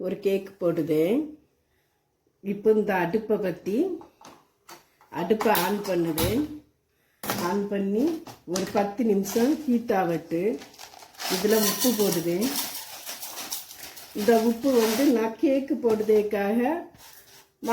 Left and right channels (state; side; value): identical; both; correlation 1.00